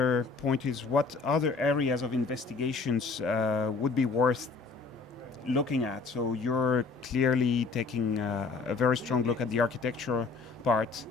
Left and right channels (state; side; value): quieter; right; 4.3 dB